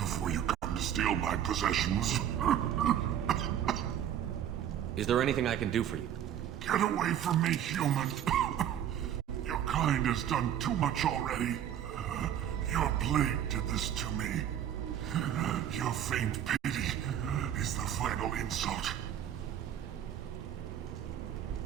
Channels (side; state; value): left; quieter; 10.2 dB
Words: you come to steal my possessions. Is there anything I can do for you? Get away from me, human. Your kind has done too much already. Your plague did this to me. Your faint pity is the final insult.